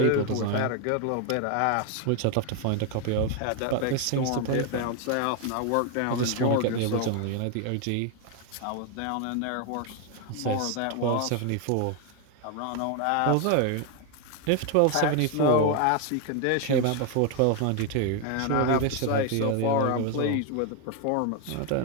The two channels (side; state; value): both; different; correlation 0.01